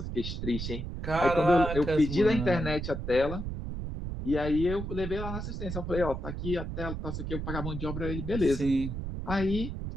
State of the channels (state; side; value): noise; right; rumble, 5 dB below the sound